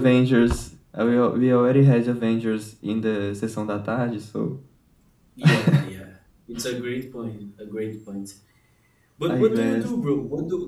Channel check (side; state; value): both; identical; correlation 1.00